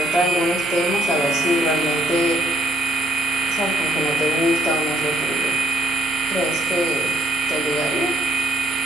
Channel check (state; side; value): normal; both; correlation 0.67